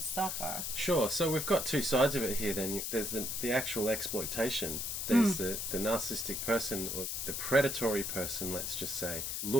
suffer. Sure. So we've got two sides of it here then. There's the actual exploitation. There's the narcissistic person, or the predatory person, let's just say,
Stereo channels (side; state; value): left; noise; hiss, 3 dB below the sound